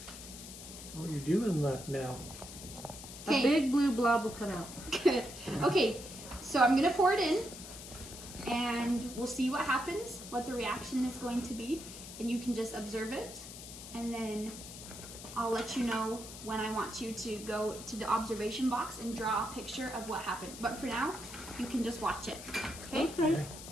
Oh, you're doing left now. A Okay. big blue blob will come out. Good. Okay, so I'm gonna pour it in, and we'll see what happens, what the reaction is going to be, and you can just observe it, and then I'll let you know when I want you to go to the observation box and draw a picture of what happened. But for now, you can just watch it. Okay? Okay.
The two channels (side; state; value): left; noise; hiss, 12 dB below the sound